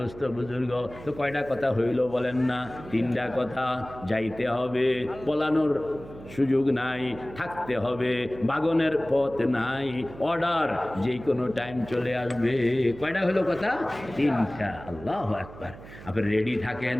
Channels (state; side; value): noise; right; hum, 16 dB below the sound